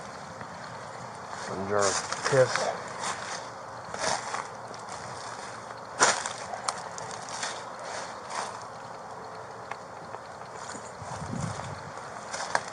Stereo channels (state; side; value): identical; both; correlation 1.00